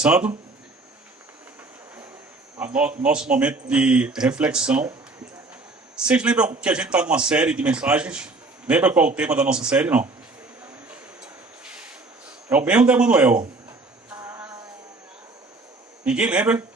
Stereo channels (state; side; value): quieter; left; 3.4 dB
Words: nosso momento de reflexão. Vocês lembram que a gente está numa série de mensagens? Lembra qual é o tema da nossa série, não? É o mesmo da Emanuel. Ninguém lembra?